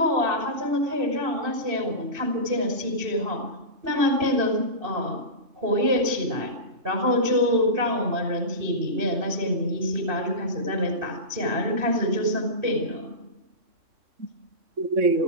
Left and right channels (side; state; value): left; late; 2.7 ms